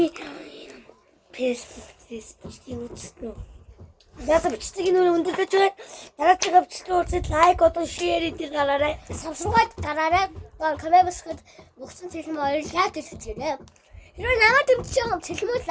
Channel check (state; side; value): identical; both; correlation 1.00